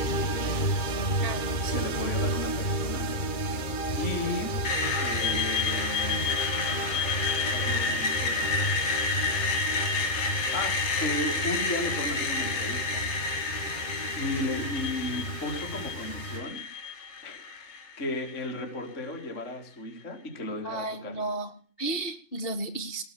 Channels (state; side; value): late; right; 2.4 ms